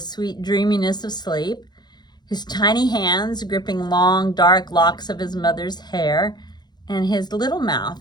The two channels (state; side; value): late; right; 0.21 ms